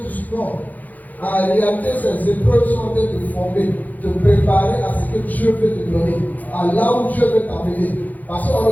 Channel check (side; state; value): right; late; 0.081 ms